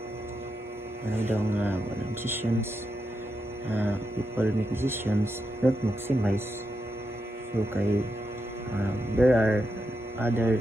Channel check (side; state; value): both; normal; correlation 0.85